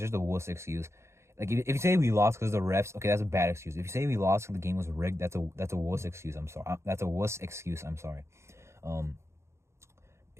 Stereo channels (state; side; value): late; left; 0.13 ms